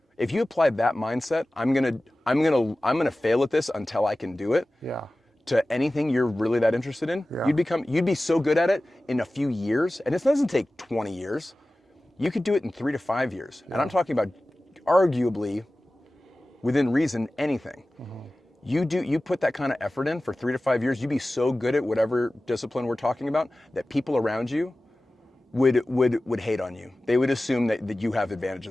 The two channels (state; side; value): normal; both; correlation 0.96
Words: If you applied that mindset, I'm gonna fail at this until I can do it, Yeah. to anything you're really that interested in, Yeah. you'd be so good at it in a few years, and it doesn't take 20 years. You could do it in 3 to 5 years. And I'm talking about arguably, within reason, anything. You put that kind of effort in for 3 to 5 years, you'd be so good at whatever discipline we're talking about that people around you would hate on you. They would assume that you have